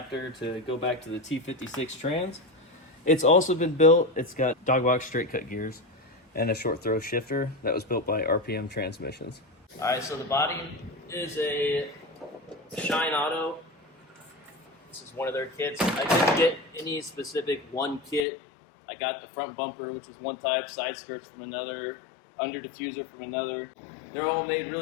to go back to the T56 trans. It's also been built. It's got dog box straight cut gears and a short throw shifter that was built by RPM Transmissions. All right, so the body is a Shine Auto. This is one of their kits. I didn't get any specific one kit. I got the front bumper, which is one type, side skirts from another, under diffuser from another. They're all made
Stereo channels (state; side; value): drops out; right; at 18.2 s